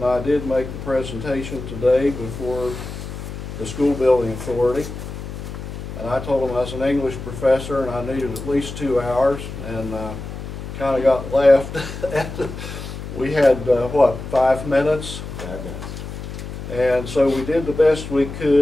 I did make the presentation today before the School Building Authority. And I told them I was an English professor and I needed at least 2 hours, and kind of got left. We had, 5 minutes? 5 minutes. And so we did the best we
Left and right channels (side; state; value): left; noise; hum, 9 dB below the sound